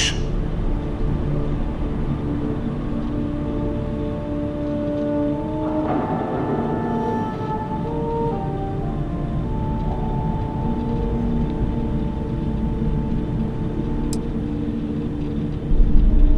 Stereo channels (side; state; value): both; identical; correlation 1.00